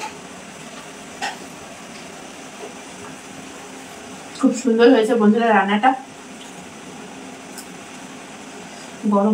খুব সুন্দর হয়েছে বন্ধুরা। রান্নাটা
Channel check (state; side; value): identical; both; correlation 1.00